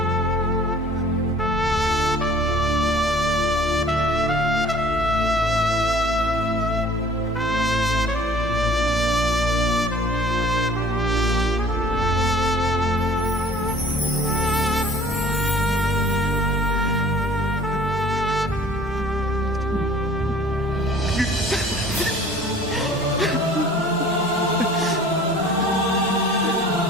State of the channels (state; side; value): normal; both; correlation 0.50